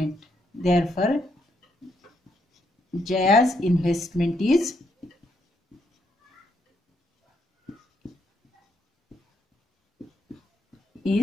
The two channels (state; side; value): normal; both; correlation 0.76